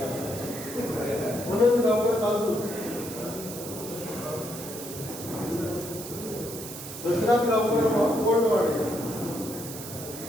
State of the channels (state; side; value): noise; right; hiss, 11 dB below the sound